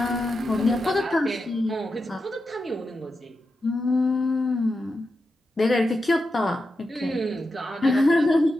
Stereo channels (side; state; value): both; normal; correlation 0.89